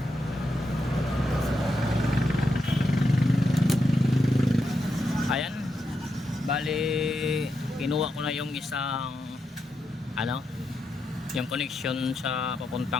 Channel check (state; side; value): normal; both; correlation 0.84